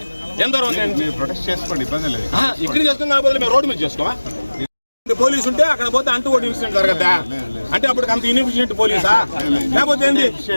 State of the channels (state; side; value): inverted; both; correlation -1.00